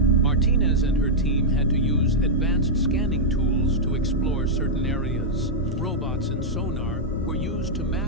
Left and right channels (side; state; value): both; normal; correlation -0.06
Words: and her team had to use advanced scanning tools to explore certain areas. Robots and sonar were used to